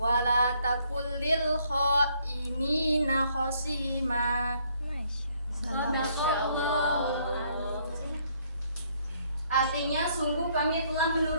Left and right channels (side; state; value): both; inverted; correlation -0.68